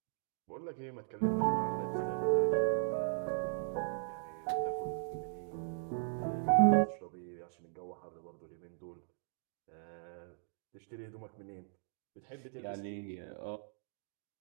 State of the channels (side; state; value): left; silent; digital silence